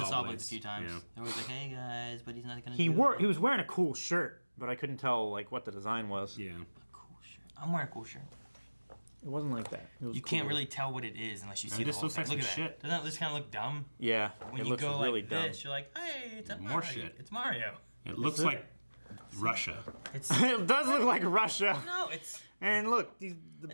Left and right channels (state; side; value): inverted; both; correlation -1.00